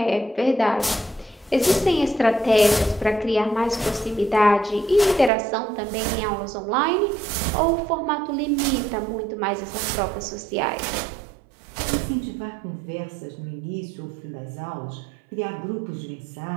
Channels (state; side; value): drops out; left; at 5.3 s